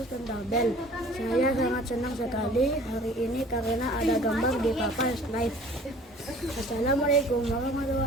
dan tabel. Saya sangat senang sekali hari ini karena ada gambar di papan slide. Assalamualaikum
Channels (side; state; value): both; normal; correlation 0.49